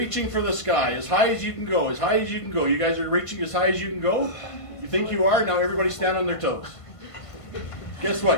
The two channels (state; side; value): late; right; 1.5 ms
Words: for the sky? As high as you can go, as high as you can go. You guys are reaching as high as you can go? You think you are? Now everybody stand on their toes. Guess